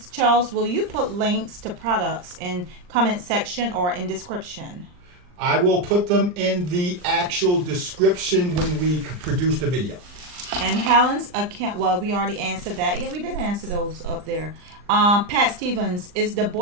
Charles, will you put links to products in comment section or in description? I will put them in the actual description when we produce the video. And Helen's account, well, we already answered that. Yeah, we did answer those up there. Pat Stevens, is the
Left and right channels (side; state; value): left; late; 39 ms